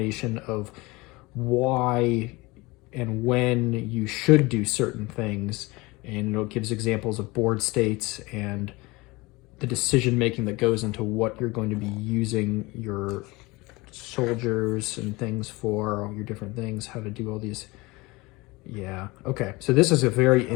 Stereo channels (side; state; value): right; quieter; 23.0 dB